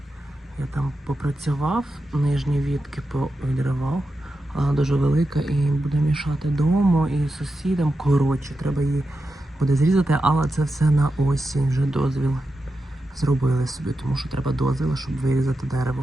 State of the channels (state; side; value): normal; both; correlation 0.89